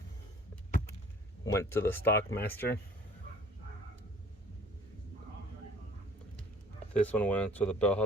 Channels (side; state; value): both; normal; correlation 0.53